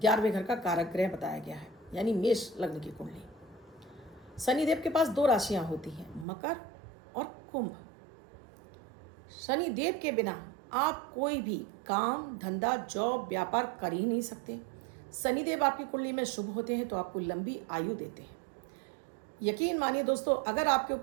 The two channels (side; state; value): left; drops out; at 6.2 s